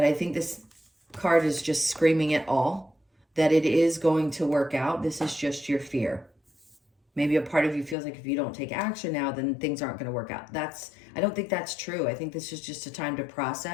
I think this card is just screaming it all, that it is going to work out. This is just your fear. Maybe a part of you feels like if you don't take action now, then things aren't going to work out. I don't think that's true. I think this is just a time to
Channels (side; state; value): right; drops out; at 8.0 s